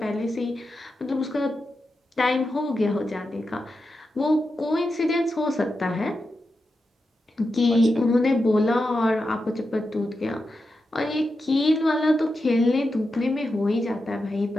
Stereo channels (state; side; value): normal; both; correlation 0.89